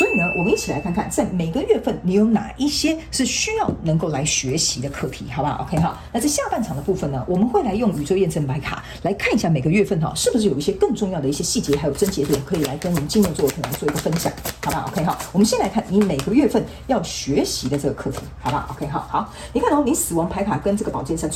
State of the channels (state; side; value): identical; both; correlation 1.00